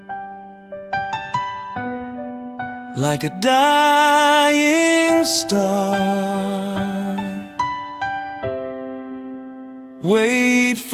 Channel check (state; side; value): identical; both; correlation 1.00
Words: like a dying star. Wait